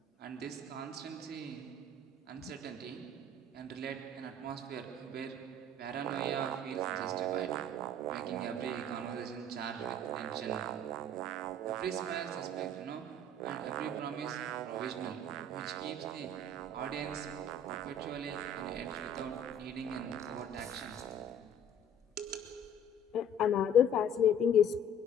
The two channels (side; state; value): both; normal; correlation 0.50